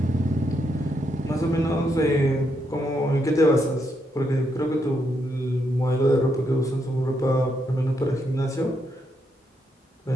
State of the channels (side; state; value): both; normal; correlation 0.79